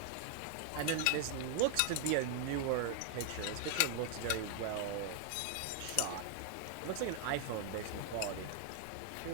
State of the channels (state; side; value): different; both; correlation 0.00